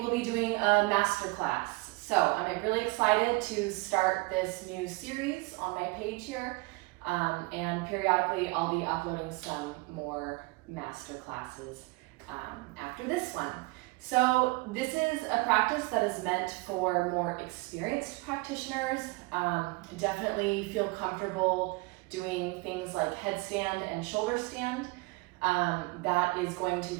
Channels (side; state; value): left; quieter; 24.4 dB